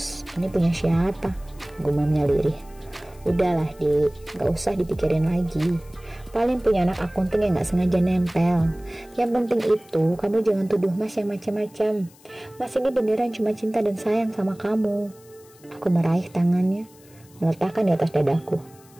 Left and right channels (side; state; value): left; noise; hiss, 27 dB below the sound